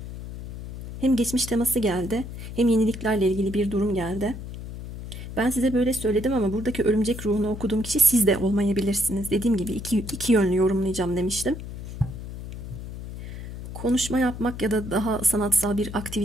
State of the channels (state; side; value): noise; left; hum, 10 dB below the sound